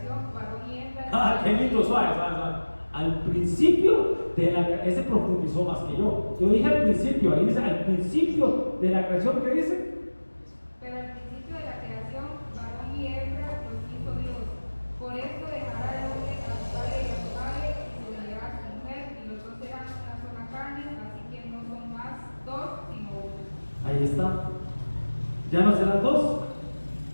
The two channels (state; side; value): inverted; both; correlation -1.00